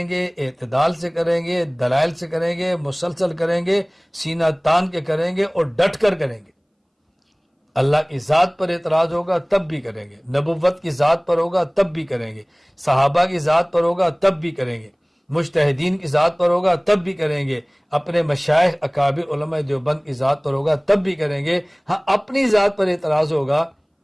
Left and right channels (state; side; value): identical; both; correlation 1.00